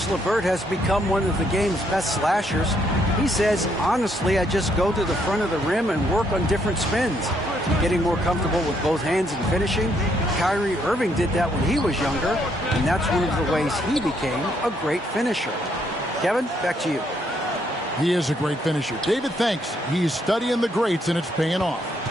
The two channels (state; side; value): normal; both; correlation 0.72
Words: LeVert has become one of the game's best slashers. He says, honestly, I just go to the front of the rim and work on different spins. Getting more comfortable with both hands and finishing. Kyrie Irving did that when he was younger, and that's one of the ways he became a great finisher. Kevin, back to you. He is a great finisher. David, thanks. He's studying the greats, and it's paying off.